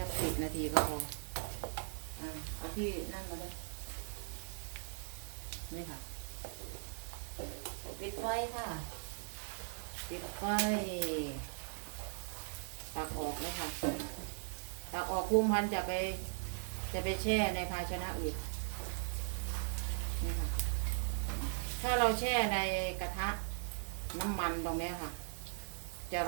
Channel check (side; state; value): left; silent; digital silence